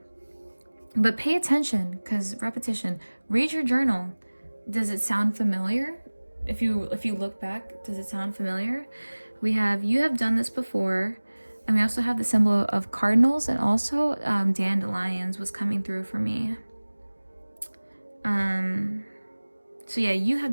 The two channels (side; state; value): both; inverted; correlation -1.00